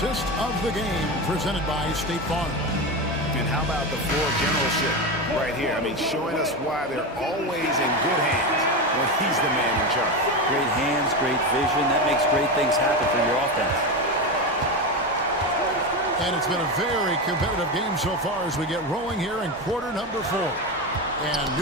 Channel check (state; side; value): normal; both; correlation 0.18